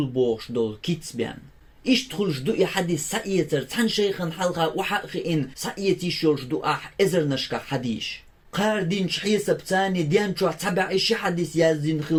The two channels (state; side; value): identical; both; correlation 1.00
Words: دول كيتسبيان إيش تخلش دو حديث سعيتر تن شيخن حلقة وحقين سعيتي شورش دو إزر نشكا حديش قاردين شحيسة بتاني ديان شو تبع إيش حديث يازين